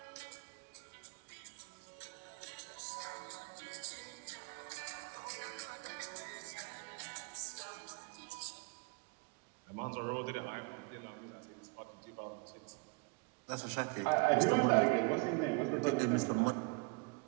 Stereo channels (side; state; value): left; quieter; 30.0 dB